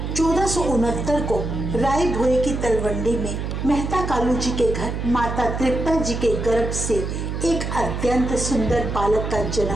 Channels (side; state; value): right; noise; hum, 4 dB below the sound